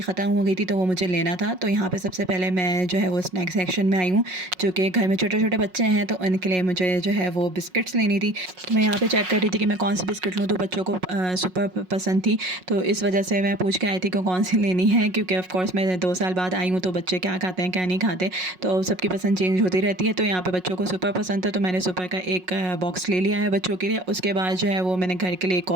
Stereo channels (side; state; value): left; late; 5.5 ms